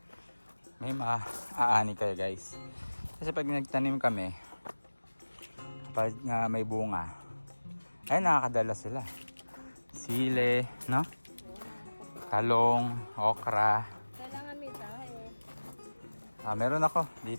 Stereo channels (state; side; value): inverted; both; correlation -1.00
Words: may maaani kayo guys. Kasi pag nagtanim kami, pag may bunga, ay nakakadala sila. Sile, no? Talong, okra. Kailangan may tayo. Meron ako